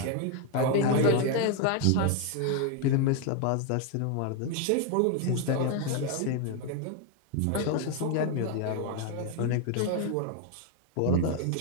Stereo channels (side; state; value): both; different; correlation 0.01